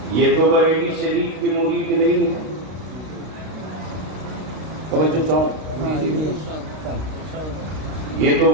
یہ تو بریلی شریف کی مرید نہیں ہے. توجہ چاہوں یہ تو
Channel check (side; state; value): left; late; 32 ms